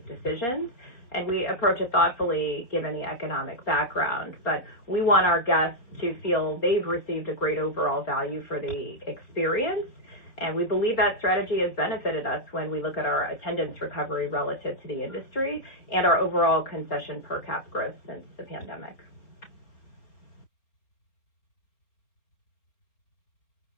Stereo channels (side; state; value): right; late; 4.2 ms